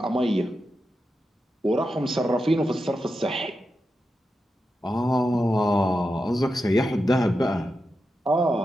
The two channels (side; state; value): both; normal; correlation 0.89